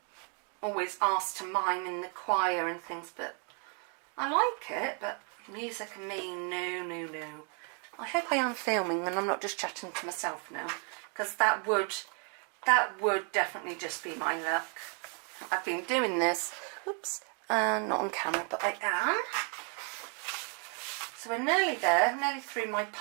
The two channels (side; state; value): left; quieter; 39.7 dB